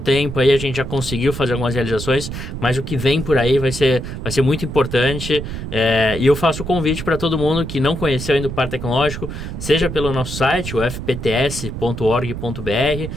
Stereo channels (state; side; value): noise; right; rumble, 7 dB below the sound